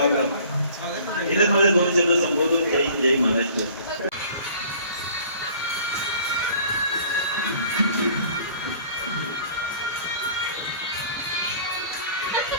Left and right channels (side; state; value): both; inverted; correlation -0.51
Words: इथेच माझे 2 शब्द संबोधून जय महाराष्ट्र.